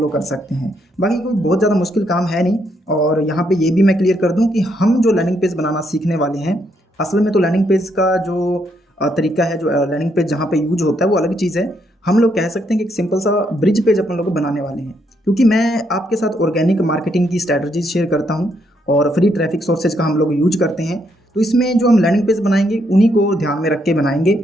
कर सकते हैं। बाकी कोई बहुत ज़्यादा मुश्किल काम है नहीं। और यहाँ पे ये भी मैं क्लियर कर दूँ कि हम जो लैंडिंग पेज बनाना सीखने वाले हैं, असल में तो लैंडिंग पेज का जो तरीका है, जो लैंडिंग पेज जहाँ पे यूज होता है वो अलग चीज़ है। हम लोग कह सकते हैं कि एक सिंपल सा ब्रिज पेज अपन लोग बनाने वाले हैं, क्योंकि मैं आपके साथ ऑर्गेनिक मार्केटिंग की स्ट्रैटेजीज शेयर करता हूँ और फ्री ट्रैफिक सोर्सेज का हम लोग यूज करते हैं। तो इसमें जो हम लैंडिंग पेज बनाएंगे उन्हीं को ध्यान में रख के बनाएंगे।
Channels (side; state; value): both; normal; correlation 0.75